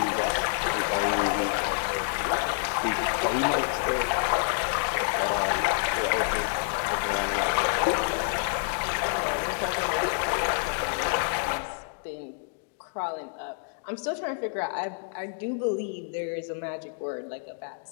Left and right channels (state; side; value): silent; right; digital silence